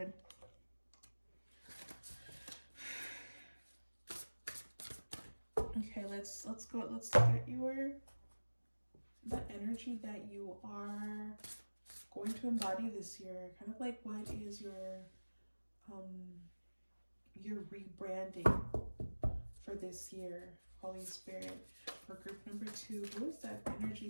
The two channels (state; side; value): inverted; both; correlation -1.00